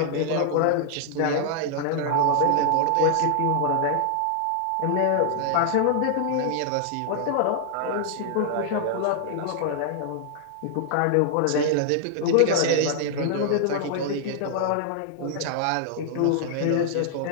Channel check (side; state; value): both; different; correlation 0.00